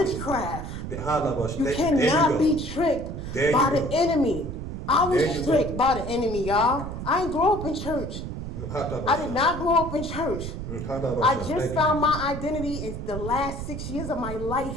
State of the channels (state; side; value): noise; right; rumble, 7 dB below the sound